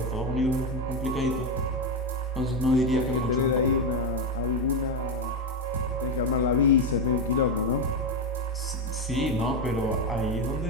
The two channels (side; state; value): both; normal; correlation 0.09